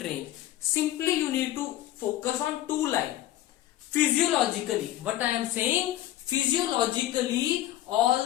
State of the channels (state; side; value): quieter; right; 14.0 dB